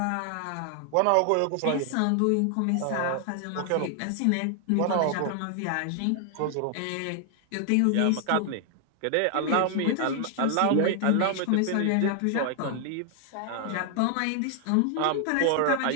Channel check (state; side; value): different; both; correlation 0.00